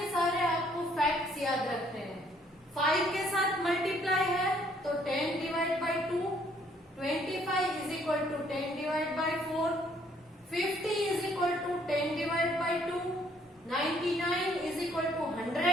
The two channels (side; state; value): both; normal; correlation 0.64